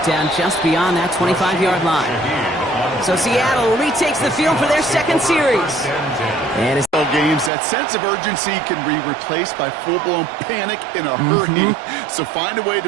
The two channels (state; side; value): drops out; left; at 7.5 s